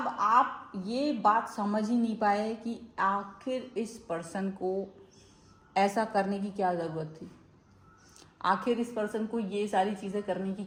आप ये बात समझ ही नहीं पाए कि आखिर इस पर्सन को ऐसा करने की क्या ज़रूरत थी, आखिर इस पर्सन को ये सारी चीज़ें करने की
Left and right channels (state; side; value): identical; both; correlation 1.00